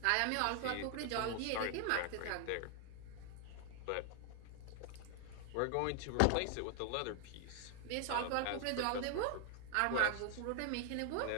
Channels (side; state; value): both; different; correlation 0.00